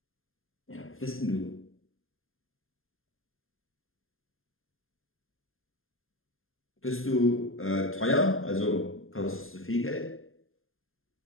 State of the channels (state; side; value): late; right; 0.60 ms